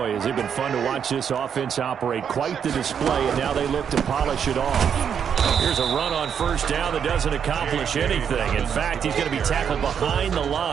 has it been fun to watch this offense operate. Quite the display, and now they look to polish it off. Here's a run on first down that doesn't accomplish anything. In fact, he's going to be tackled behind the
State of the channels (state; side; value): quieter; left; 7.7 dB